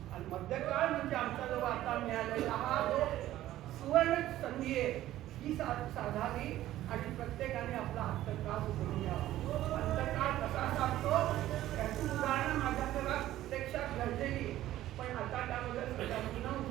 आणि मध्यकाळ म्हणजे आमचा जो आता मिळालेला हा जो सुवर्ण संधी आहे, ही साधावी आणि प्रत्येकाने आपला अंतकाळ उघडून घ्यावा. अंतकाळ कसा साधतो याची उदाहरणं माझ्या घरात प्रत्यक्षात घडलेली, पण आता त्यामध्ये सगळ्यांना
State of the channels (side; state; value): left; quieter; 14.1 dB